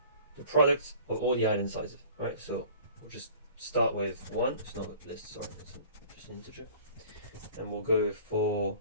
the product of all the island sizes, right? So we'll just start with 1. It's not a list, sorry, it's just an integer. And we'll go for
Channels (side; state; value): both; inverted; correlation -0.47